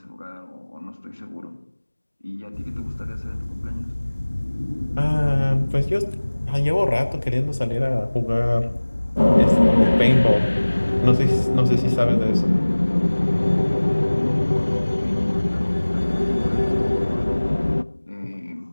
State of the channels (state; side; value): inverted; both; correlation -1.00